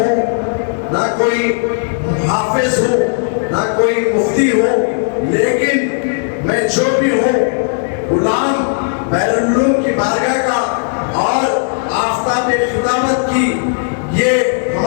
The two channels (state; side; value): silent; right; digital silence